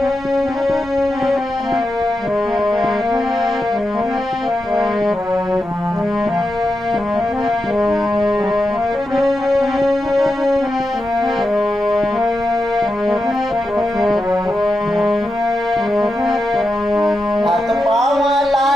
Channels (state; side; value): normal; both; correlation 0.88